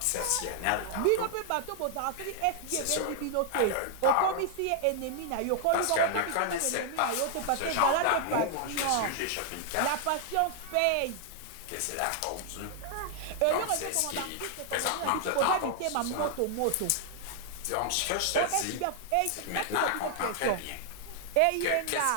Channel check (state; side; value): different; both; correlation 0.00